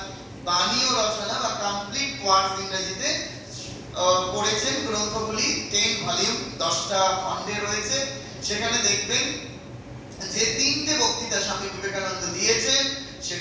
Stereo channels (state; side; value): identical; both; correlation 1.00